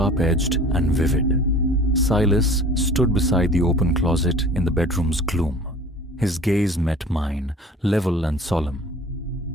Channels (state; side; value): normal; both; correlation 0.45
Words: and vivid. Silas stood beside the open closet in the bedroom's gloom. His gaze met mine, level and solemn.